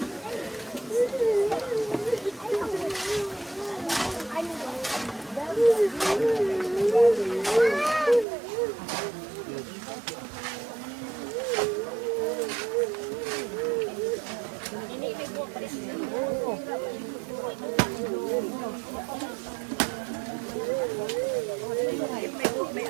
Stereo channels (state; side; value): drops out; left; at 8.2 s